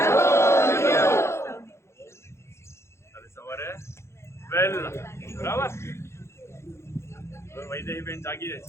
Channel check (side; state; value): right; late; 0.13 ms